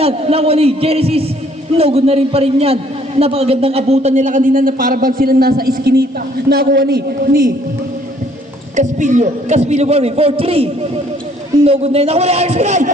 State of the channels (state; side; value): normal; both; correlation 0.62